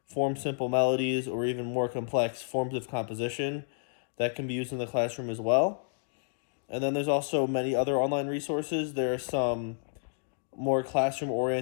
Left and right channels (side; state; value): right; silent; digital silence